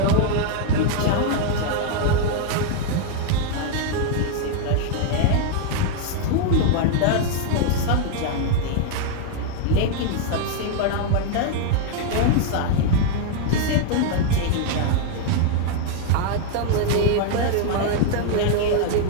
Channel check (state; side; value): different; both; correlation 0.00